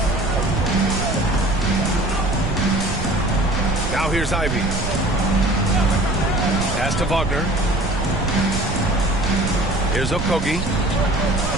Now here's Ivy. Pass to Wagner. Here's Okogie.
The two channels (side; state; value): right; noise; rumble, 4 dB below the sound